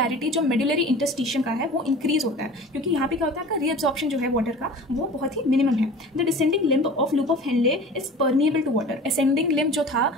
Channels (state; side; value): normal; both; correlation 0.40